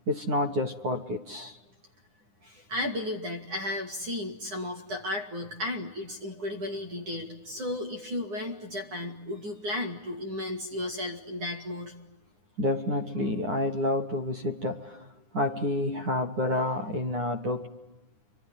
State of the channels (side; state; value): left; late; 9.8 ms